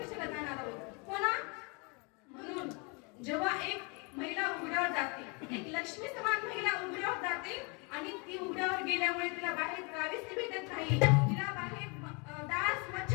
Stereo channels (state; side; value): quieter; right; 31.8 dB